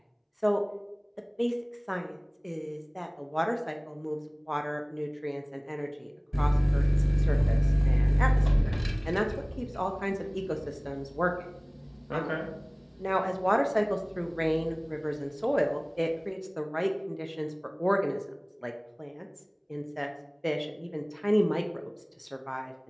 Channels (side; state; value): both; identical; correlation 1.00